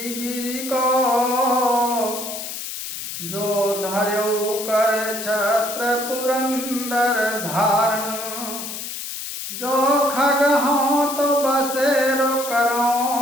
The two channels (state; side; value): noise; left; hiss, 7 dB below the sound